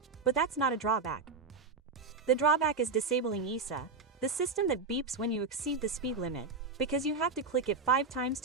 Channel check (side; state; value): left; quieter; 4.3 dB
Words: but that's not a drawback. The drawback is disabling ESA, the system that beeps when you exceed the speed limit, because you have to click it 5 times